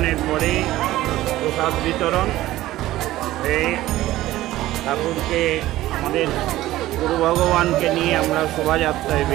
পরে প্রসাদ বিতরণ হয়ে ঠাকুরকে আমাদের গুরু ভগবানকে নিয়ে আমরা শোভাযাত্রায়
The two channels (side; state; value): left; quieter; 15.7 dB